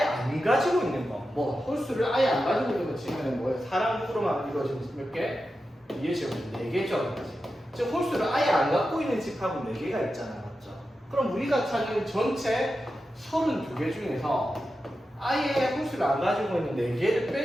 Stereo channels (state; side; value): normal; both; correlation 0.91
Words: 가지고 있는 거. 뭐, 홀수를 아예 안 가지고 있는 거 치면 뭐예요? 사람으로만 이루어진 몇 개? 2의 제곱 4개죠. 즉 홀수를 아예 안 갖고 있는 집합은 4개가 있잖아. 맞죠? 그럼 우리가 찾는 전체 32개 중에서 아예 홀수를 안 가지고 있는 4개를